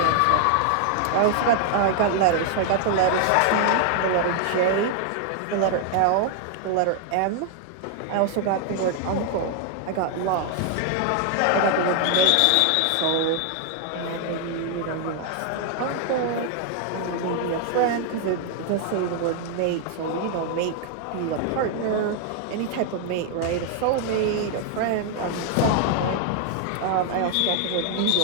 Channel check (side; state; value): both; different; correlation 0.00